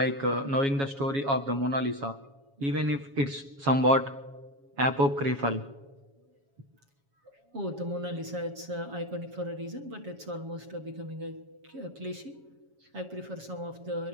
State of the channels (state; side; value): late; left; 7.2 ms